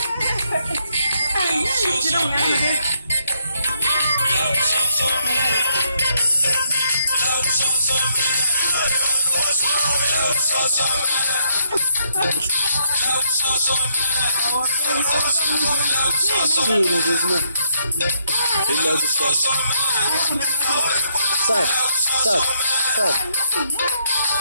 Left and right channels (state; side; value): inverted; both; correlation -0.72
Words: Sim, às vezes não. Ele leva o sol. Sabe, sabe, sabe.